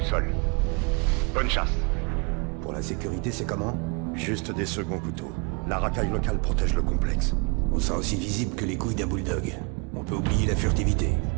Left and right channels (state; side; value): quieter; left; 32.0 dB